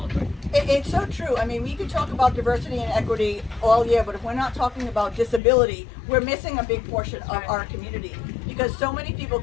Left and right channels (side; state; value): right; drops out; at 5.4 s